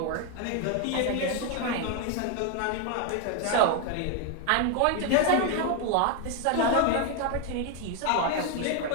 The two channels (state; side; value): different; both; correlation 0.01